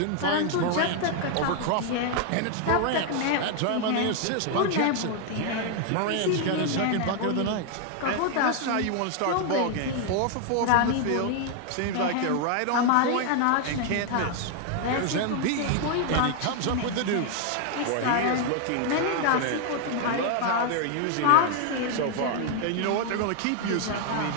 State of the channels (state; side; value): different; both; correlation 0.00